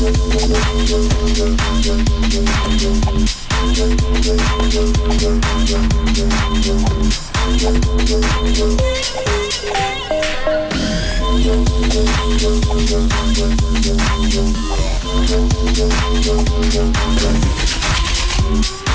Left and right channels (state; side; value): identical; both; correlation 1.00